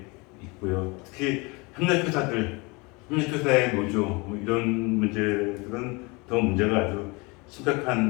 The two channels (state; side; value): quieter; right; 27.1 dB